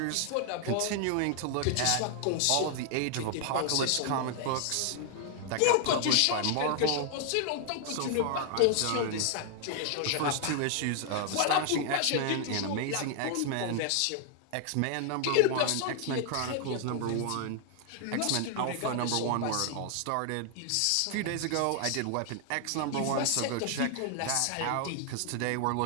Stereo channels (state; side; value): different; both; correlation 0.00